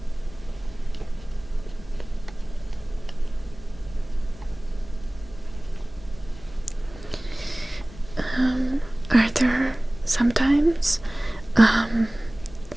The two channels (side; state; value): left; noise; rumble, 19 dB below the sound